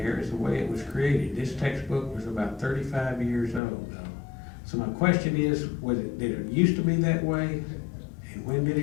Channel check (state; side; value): drops out; right; at 3.6 s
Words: as the way it was created. This textbook was about 35 years old, though. So my question is, did it used to be that way? And when did